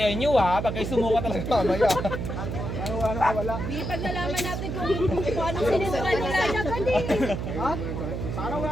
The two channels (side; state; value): right; noise; hum, 4 dB below the sound